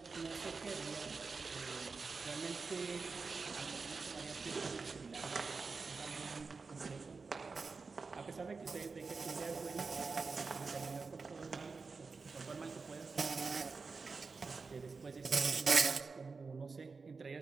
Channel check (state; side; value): quieter; left; 4.5 dB